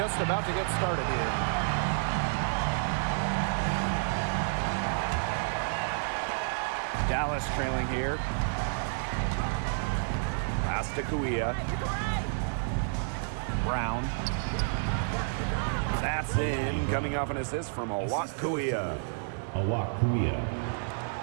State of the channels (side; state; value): left; silent; digital silence